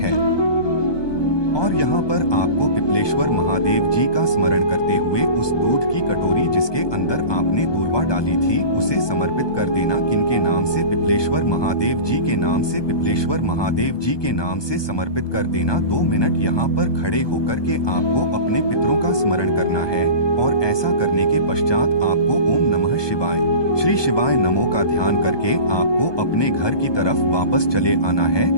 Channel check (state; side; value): late; right; 1.2 ms